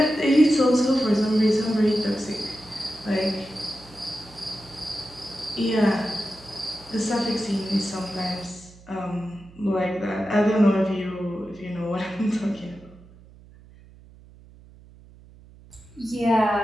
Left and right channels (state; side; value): noise; right; hum, 23 dB below the sound